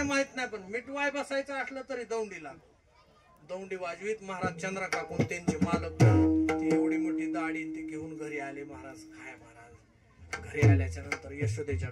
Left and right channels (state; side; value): identical; both; correlation 1.00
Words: माहित नाही पण मिटवाय बसायचं असलं तरी दौंडी वाजवीत महाराज चंद्रा काकून त्यांचे मालक ती एवढी मोठी दाढी ते घेऊन घरी आले महाराज काय महाराज घरी आल्याच्या नंतर यशोदेच्या